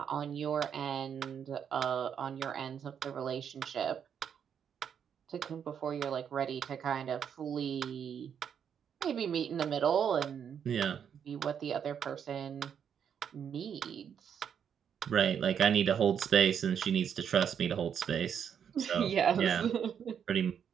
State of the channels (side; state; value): left; quieter; 8.0 dB